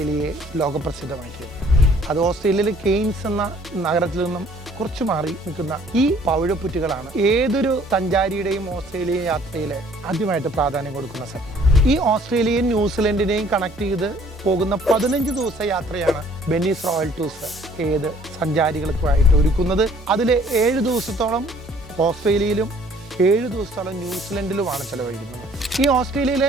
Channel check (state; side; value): normal; both; correlation 0.58